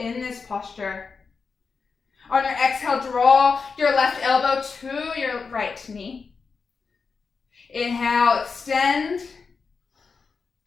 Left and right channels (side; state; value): right; quieter; 5.0 dB